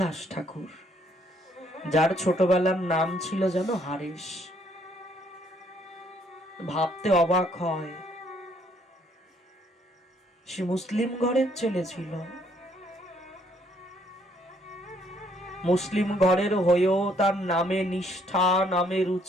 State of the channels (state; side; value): normal; both; correlation 0.67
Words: ঠাকুর, যার ছোটবেলার নাম ছিল যেন হারেশ। ভাবতে অবাক হয়, সে মুসলিম ঘরের ছেলে ছিল। মুসলিম ঘরের হয়েও তার নামে নিষ্ঠা, নামে